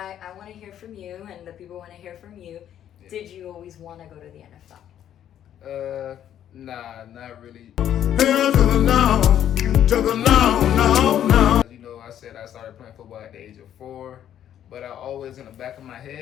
want to hear from you, and the people want to hear from you. Yeah. Did you always want to go to the NFL? Nah, not really. Hell to the no, no. You know, I said I started playing football at the age of 4, but I always in the back of my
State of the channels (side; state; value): right; quieter; 10.5 dB